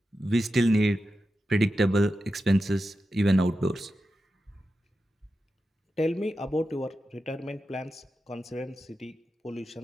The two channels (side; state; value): both; normal; correlation 0.90